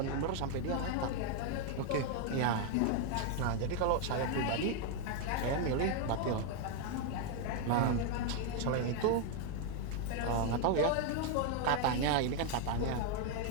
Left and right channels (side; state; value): both; different; correlation 0.01